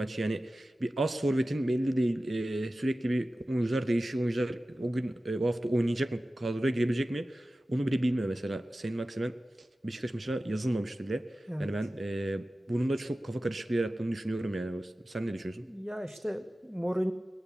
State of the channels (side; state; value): both; normal; correlation 0.95